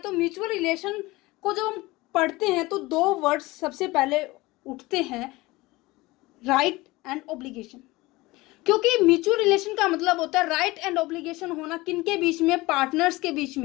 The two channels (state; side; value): quieter; right; 20.9 dB